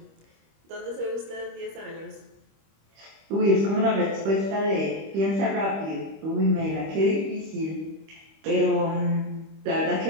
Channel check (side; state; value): left; late; 25 ms